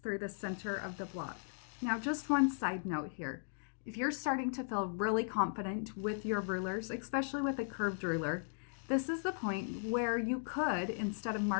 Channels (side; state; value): right; silent; digital silence